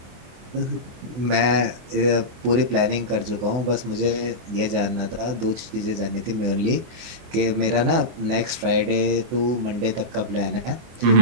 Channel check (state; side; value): late; left; 24 ms